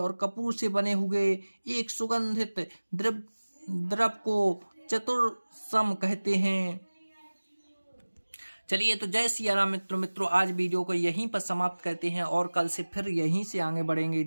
कपूर से बने हुए एक सुगंधित द्रव्य को चतुर्सम कहते हैं। चलिए, तो जय सिया राम मित्रों, आज वीडियो को यहीं पर समाप्त करते हैं और कल से फिर यहीं से आगे बढ़ेंगे।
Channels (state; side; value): inverted; both; correlation -1.00